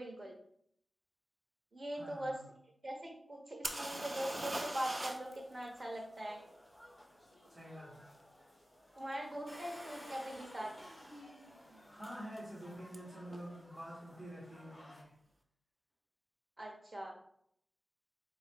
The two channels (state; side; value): normal; both; correlation 0.96